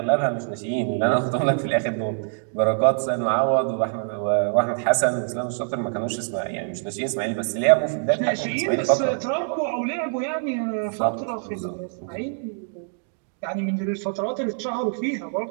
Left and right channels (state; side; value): silent; left; 62 dB below the other